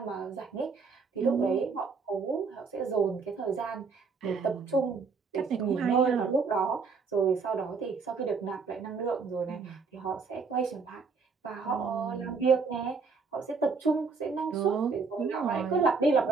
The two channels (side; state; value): left; quieter; 4.9 dB